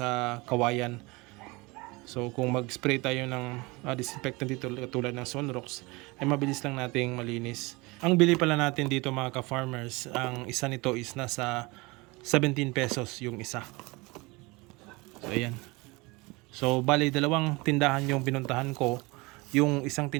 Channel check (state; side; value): quieter; left; 24.7 dB